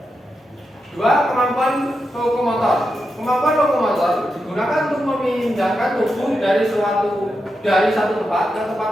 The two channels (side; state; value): both; normal; correlation 0.87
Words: 2. Kemampuan lokomotor. Kemampuan lokomotor digunakan untuk memindahkan tubuh dari satu tempat ke tempat